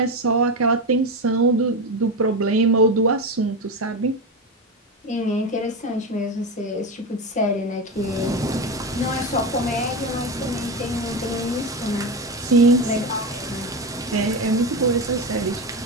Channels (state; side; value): normal; both; correlation 0.18